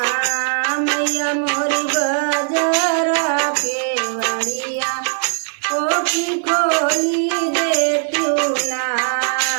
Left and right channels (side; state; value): left; silent; digital silence